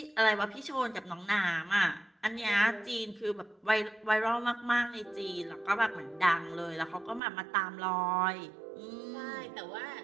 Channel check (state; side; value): drops out; left; at 7.2 s